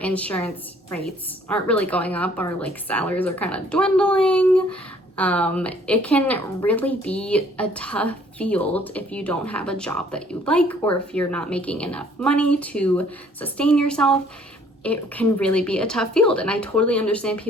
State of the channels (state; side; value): normal; both; correlation 0.59